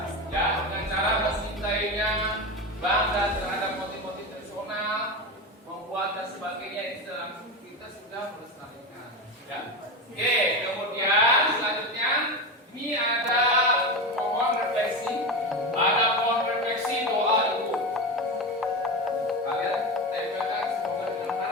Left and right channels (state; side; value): normal; both; correlation 0.20